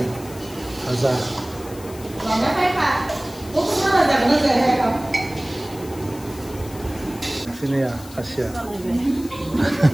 aja sini ya hasil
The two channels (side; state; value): left; noise; hiss, 18 dB below the sound